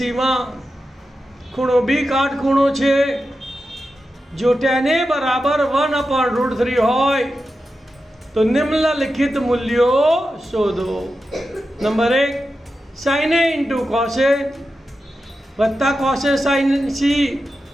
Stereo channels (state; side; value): normal; both; correlation 0.91